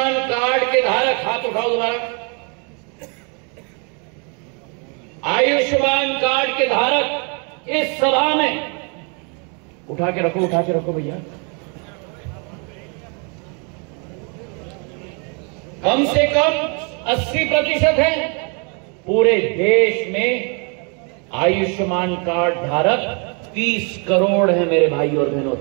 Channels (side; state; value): left; quieter; 36.0 dB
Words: कार्ड के धारक, हाथ उठाओ दोबारा, आयुष्मान कार्ड के धारक इस सभा में उठा के रखो भैया, कम से कम 80% है। पूरे देश में आयुष्मान कार्ड धारक 30 करोड़ है मेरे भाई और बहनों,